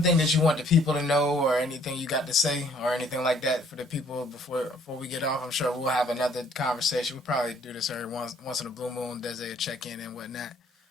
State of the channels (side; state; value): both; normal; correlation 0.61